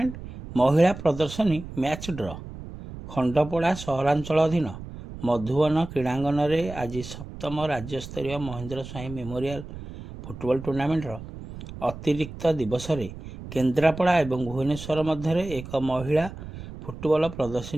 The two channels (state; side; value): noise; right; rumble, 12 dB below the sound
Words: ମହିଳା ପ୍ରଦର୍ଶନୀ ମ୍ୟାଚ୍ ଡ୍ର। ଖଣ୍ଡପଡ଼ା ସହରାଞ୍ଚଳ ଅଧୀନ ମଧୁବନ କ୍ରୀଡ଼ାଙ୍ଗନରେ ଆଜି ସପ୍ତମ ରାଜ୍ୟସ୍ତରୀୟ ମହେନ୍ଦ୍ର ସ୍ୱାଇଁ ମେମୋରିଆଲ ଫୁଟବଲ ଟୁର୍ଣ୍ଣାମେଣ୍ଟର ଅତିରିକ୍ତ ଦିବସରେ କେନ୍ଦ୍ରାପଡ଼ା ଏବଂ ଭୁବନେଶ୍ୱର ମଧ୍ୟରେ ଏକ ମହିଳା ଫୁଟବଲ